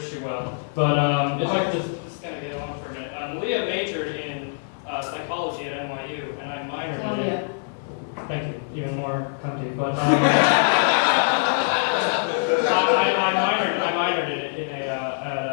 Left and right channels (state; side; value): silent; right; 63 dB below the other